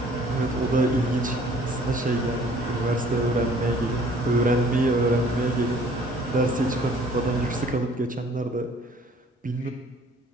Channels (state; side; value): normal; both; correlation 0.55